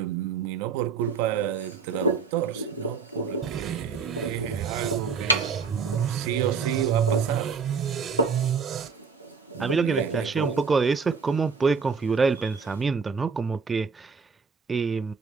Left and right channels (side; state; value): left; quieter; 5.5 dB